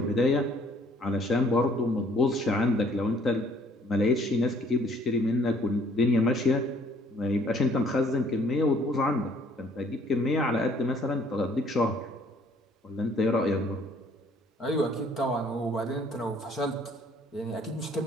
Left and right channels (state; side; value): normal; both; correlation 0.59